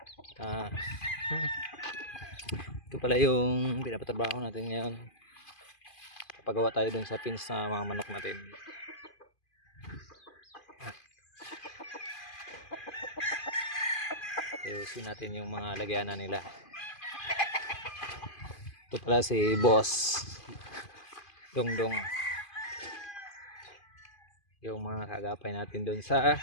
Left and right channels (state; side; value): late; right; 2.5 ms